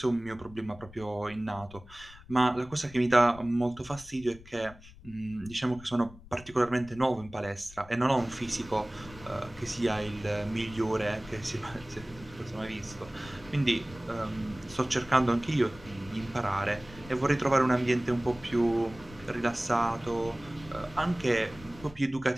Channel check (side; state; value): left; noise; rumble, 19 dB below the sound